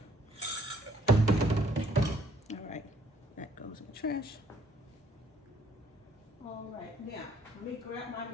All right, that goes in the trash. All right, now let me grab my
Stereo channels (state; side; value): normal; both; correlation 0.63